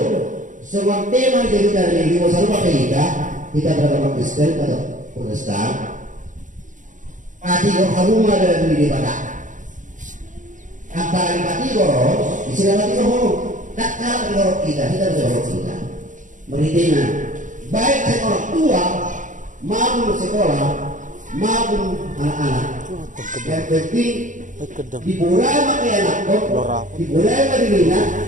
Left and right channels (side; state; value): left; late; 0.37 ms